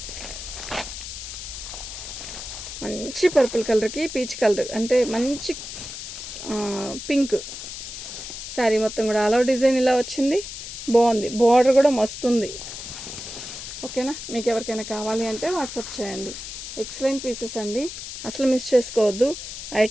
మంచి పర్పుల్ కలర్కి పీచ్ కలర్ అంటే మంచి పింక్ శారీ మొత్తం కూడా ఆల్ ఓవర్ డిజైన్ ఇలా వచ్చింది. బాగుంది, బార్డర్ కూడా మస్తుంది. ఓకేనా? మీకు ఎవరికైనా కావాలి అంటే వాట్సాప్ చేయండి. ఎక్సలెంట్ పీసెస్ అండి, అసలు మిస్ చేసుకోవద్దు.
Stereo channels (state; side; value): noise; left; hiss, 9 dB below the sound